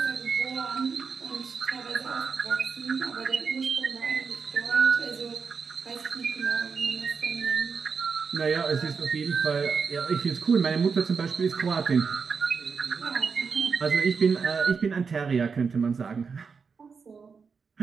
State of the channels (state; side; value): quieter; left; 5.5 dB